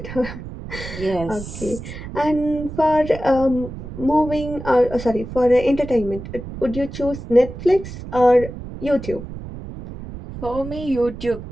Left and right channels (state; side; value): noise; right; rumble, 11 dB below the sound